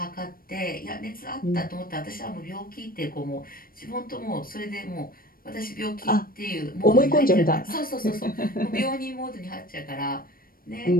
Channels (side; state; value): right; late; 0.42 ms